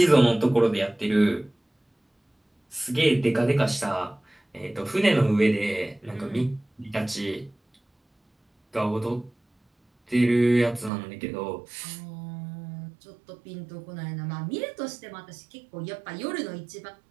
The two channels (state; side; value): drops out; left; at 10.9 s